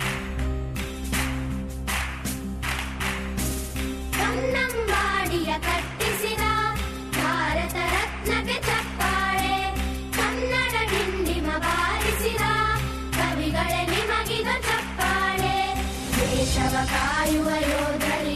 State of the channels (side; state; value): both; identical; correlation 1.00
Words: ಕನ್ನಂಬಾಡಿಯ ಕಟ್ಟಿಸಿದ ಭಾರತ ರತ್ನಕ್ಕೆ ಚಪ್ಪಾಳೆ, ಕನ್ನಡ ಡಿಂಡಿಮ ಬಾರಿಸಿದ ಕವಿಗಳೇ ನಿಮಗಿದ ಚಪ್ಪಾಳೆ. ದೇಶವ ಕಾಯುವ